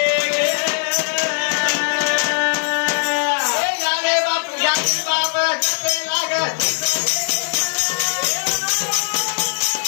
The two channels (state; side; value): silent; right; 66 dB below the other